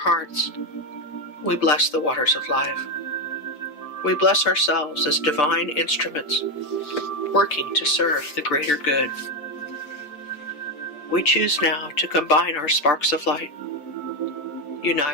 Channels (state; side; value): late; right; 6.8 ms